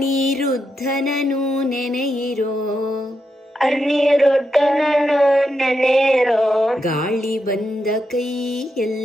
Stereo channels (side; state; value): both; normal; correlation 0.84